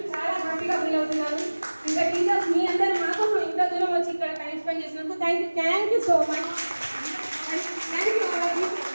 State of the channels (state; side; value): inverted; both; correlation -1.00